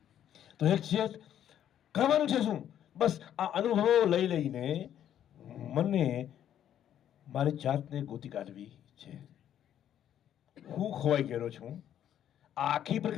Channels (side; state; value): right; quieter; 10.5 dB